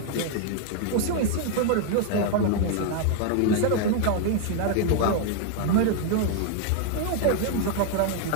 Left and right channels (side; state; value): both; different; correlation 0.00